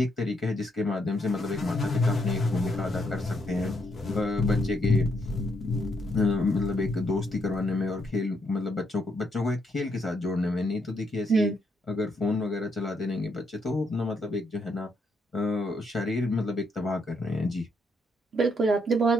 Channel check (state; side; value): normal; both; correlation 0.76